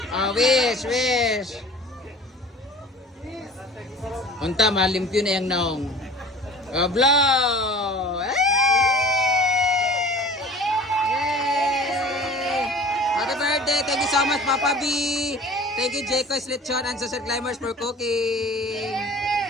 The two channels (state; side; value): normal; both; correlation 0.42